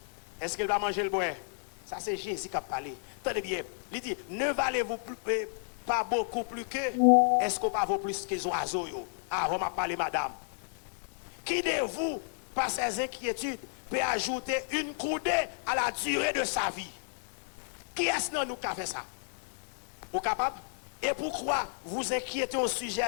Est-ce qu'il va manger le bois? Ça, c'est Jésus qui a parlé. Tenez bien. Il dit ne valez-vous pas beaucoup plus que? Est-ce qu'on pas vaut plus que les oiseaux? Ah, on m'a parlé, madame. Qui de vous, par ses inquiétudes, peut ajouter une coudée à la durée de sa vie? Qui est-ce que nous qui a fait ça? Vous capable? Et pourquoi vous inquiétez au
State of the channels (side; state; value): right; silent; digital silence